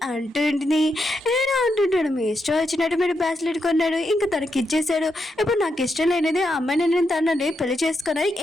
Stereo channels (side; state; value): both; normal; correlation 0.83